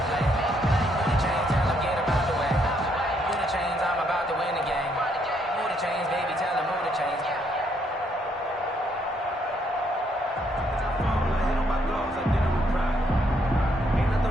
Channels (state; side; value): normal; both; correlation 0.72